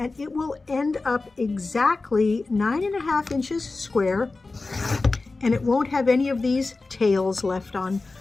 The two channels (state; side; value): quieter; right; 3.6 dB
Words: it will end up exactly 9.5 inches square. And it won't have any of these tails left on